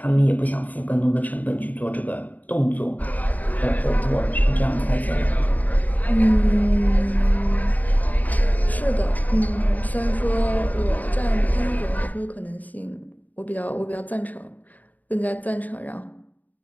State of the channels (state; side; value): late; right; 0.078 ms